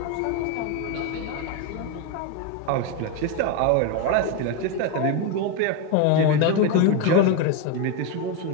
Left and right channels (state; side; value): different; both; correlation 0.03